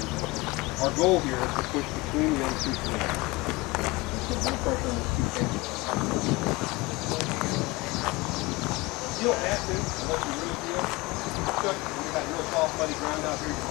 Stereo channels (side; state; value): right; quieter; 22.9 dB